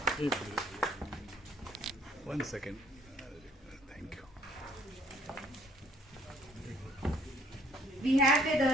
One second. Thank you. We have with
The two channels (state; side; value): normal; both; correlation 0.61